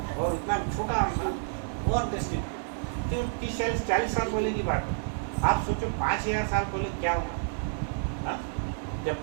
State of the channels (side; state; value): left; silent; digital silence